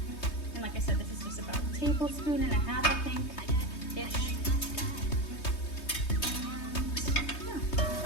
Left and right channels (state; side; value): late; right; 3.2 ms